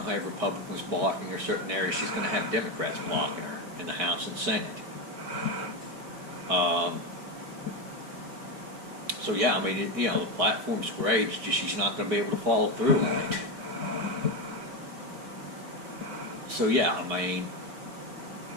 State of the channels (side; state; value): left; late; 4.7 ms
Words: to have Republicans blocking her, certain areas she's going to have Democrats blocking her in the House and Senate. So yeah, I mean, the platform's great, it's just she's not going to be able to follow through on it. So yeah, I mean,